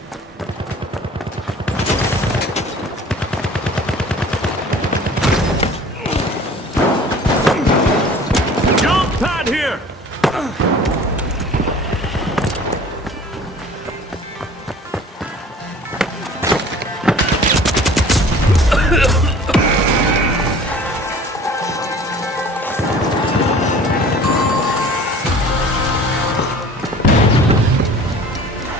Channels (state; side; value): normal; both; correlation 0.46